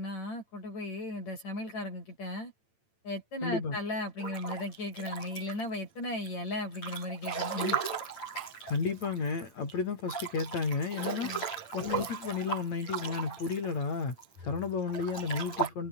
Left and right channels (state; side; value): late; right; 8.8 ms